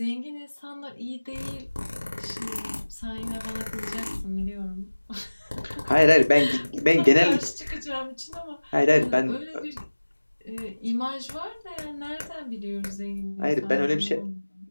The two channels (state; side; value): inverted; both; correlation -1.00